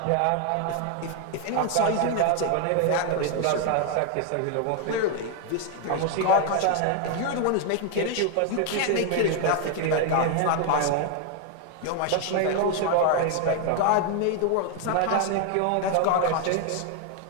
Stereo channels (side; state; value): both; different; correlation 0.01